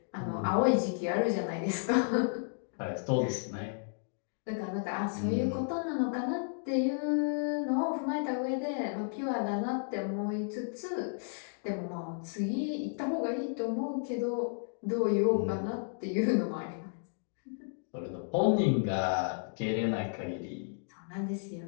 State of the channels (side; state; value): right; silent; digital silence